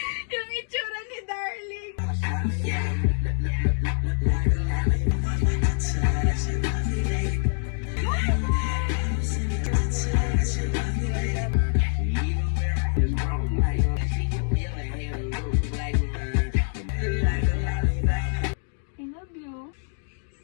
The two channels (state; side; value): silent; right; digital silence